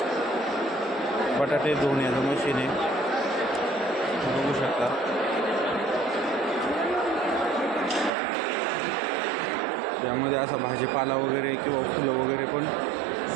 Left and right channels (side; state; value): left; drops out; at 8.1 s